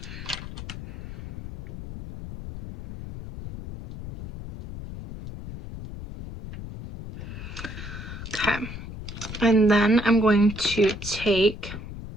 Okay, and then I'm going to take,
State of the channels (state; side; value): noise; left; rumble, 10 dB below the sound